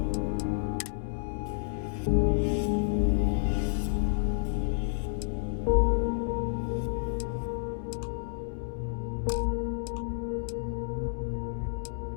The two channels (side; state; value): right; silent; digital silence